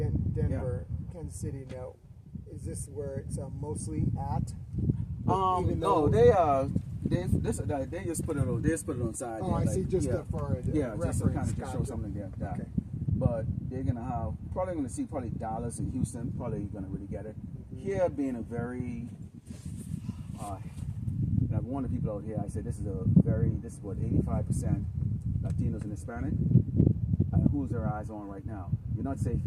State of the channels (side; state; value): both; identical; correlation 1.00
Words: Denver, Kansas City. Now, is this where it's mostly at? No, they just put it on. They just put it on side. Oh, I see. Just for reference. Just to kind of show something there. Okay. But they're gonna see Dallas and Houston. Probably gonna really get it. Here being a very, and I've warned the people out here. I said this is what 85% Latinos and Hispanic. And who's their eyes on right now? You're not safe